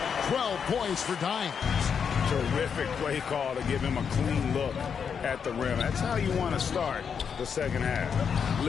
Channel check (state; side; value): quieter; right; 6.8 dB